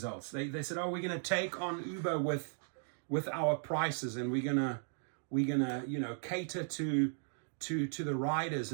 They said, oh, we're going to take on Uber with our prices, and we're gonna cater to the riders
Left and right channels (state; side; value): silent; left; digital silence